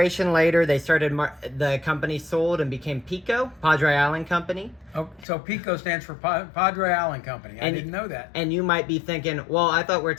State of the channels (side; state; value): right; drops out; at 5.2 s